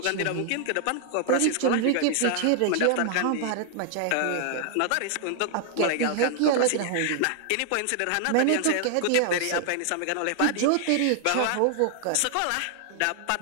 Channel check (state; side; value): different; both; correlation 0.00